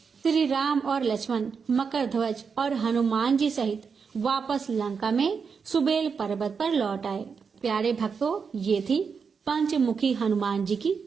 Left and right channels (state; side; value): quieter; left; 5.8 dB